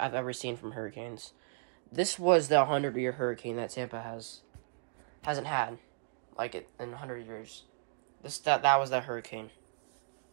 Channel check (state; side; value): silent; left; digital silence